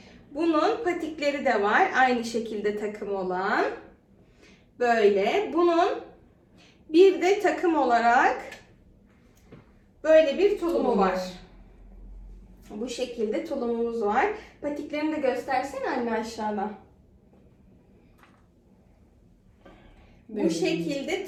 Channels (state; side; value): identical; both; correlation 1.00